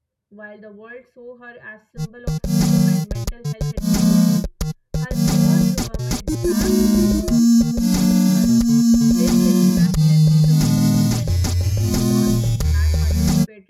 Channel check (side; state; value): both; identical; correlation 1.00